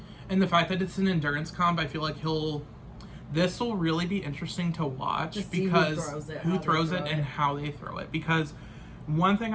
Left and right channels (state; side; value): identical; both; correlation 1.00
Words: And the fact that it's an endurance comp, I feel like this will really be interesting to watch because who throws it and how they throw it. Because one thing